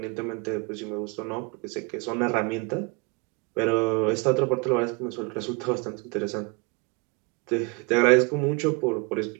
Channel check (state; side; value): quieter; left; 30.6 dB